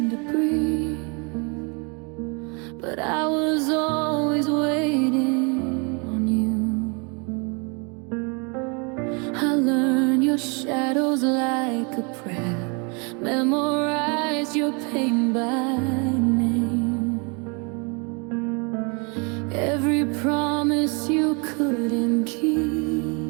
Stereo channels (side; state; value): left; quieter; 33.1 dB